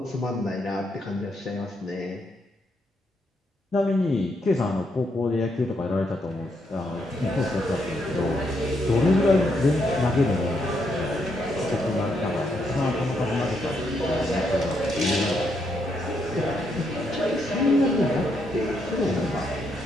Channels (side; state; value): both; normal; correlation 0.77